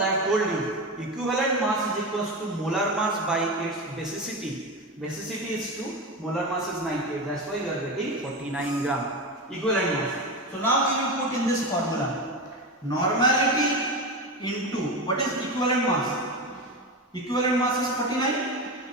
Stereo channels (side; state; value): both; normal; correlation 0.21